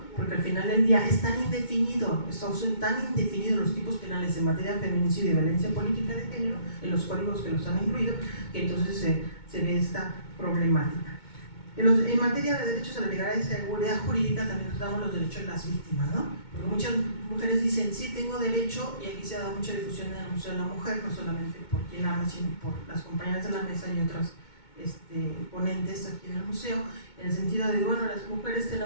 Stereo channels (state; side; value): late; right; 2.2 ms